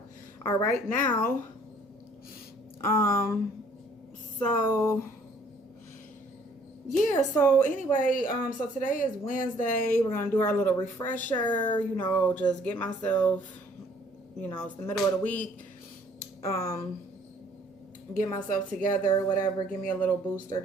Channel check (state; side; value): normal; both; correlation 0.59